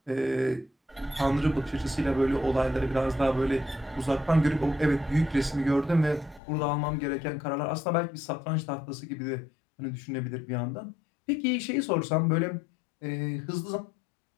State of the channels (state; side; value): drops out; right; at 6.4 s